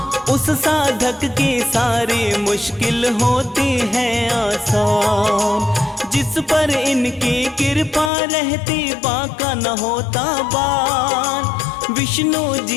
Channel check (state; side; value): drops out; right; at 8.1 s